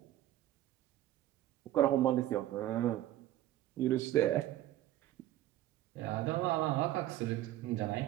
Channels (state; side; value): quieter; left; 14.0 dB